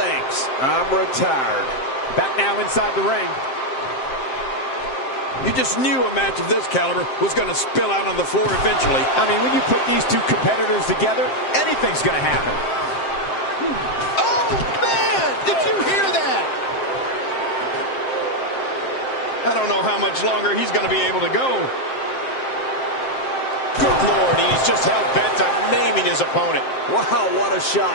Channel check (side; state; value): right; late; 7.6 ms